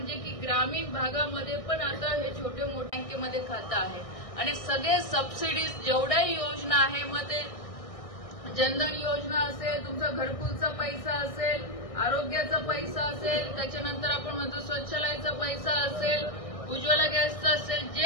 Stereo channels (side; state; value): right; late; 1.6 ms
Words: की ग्रामीण भागामध्ये पण आता हे छोटे मोठे बँकेमध्ये खातं आहे आणि सगळे सबसिडीज जेवढ्याही योजना आहे, मग ते जनधन योजना असेल, तुमचा घरकुलचा पैसा असेल, आरोग्याचा पैसा असेल, त्याच्यानंतर आपण म्हणतो स्वच्छालयाचा पैसा असेल, उज्ज्वला गॅसचा असेल,